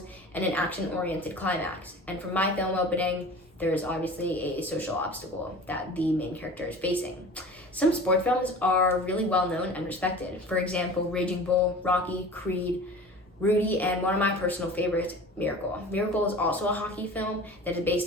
and an action-oriented climax. And for my film opening, there is obviously a social obstacle that the main character is facing. Some sports films are really well known and respected. For example, Raging Bull, Rocky, Creed, Rudy, and one of my personal favorites, Miracle. Miracle is also a hockey film that is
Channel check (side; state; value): both; normal; correlation 0.39